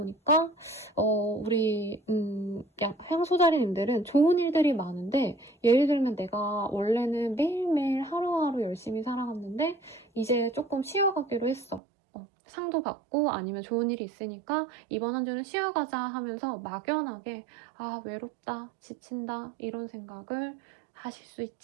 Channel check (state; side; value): drops out; left; at 11.8 s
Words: 우리 향소자리님들은 좋은 일들이 많은데 예를 들면 내가 원래는 매일매일 하루하루 열심히 살아갔는데 이제 조금 쉬어가기로 했어. 상도 받고 아니면 좋은 일이 있으니까 이번 한 주는 쉬어가자 하면서 막연하게 외롭다, 지친다 이런 생각을 하실 수